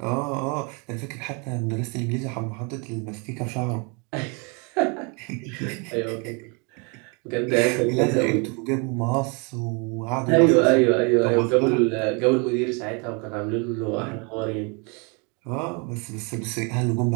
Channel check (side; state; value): left; quieter; 32.9 dB